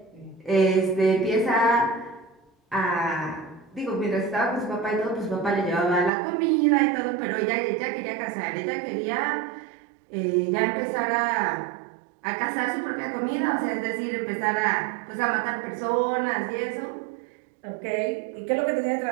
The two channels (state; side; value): drops out; left; at 6.1 s